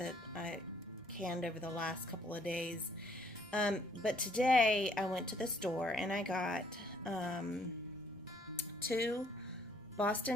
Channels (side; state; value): both; normal; correlation 0.65